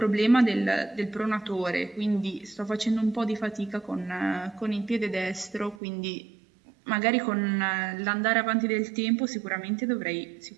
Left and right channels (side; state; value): left; drops out; at 5.8 s